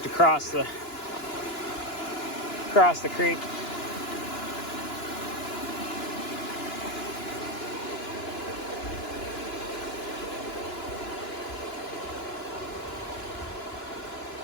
to cross the creek.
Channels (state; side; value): late; right; 2.9 ms